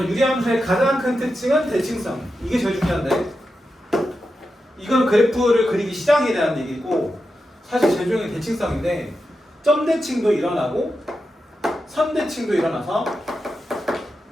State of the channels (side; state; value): both; normal; correlation 0.89